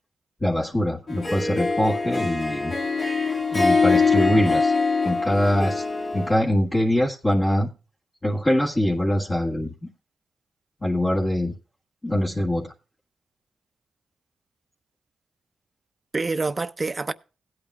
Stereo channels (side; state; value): both; normal; correlation 0.94